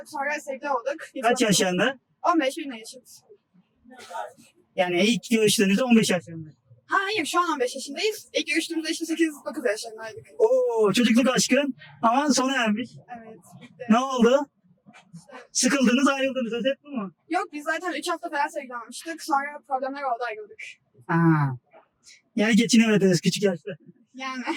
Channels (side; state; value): both; identical; correlation 1.00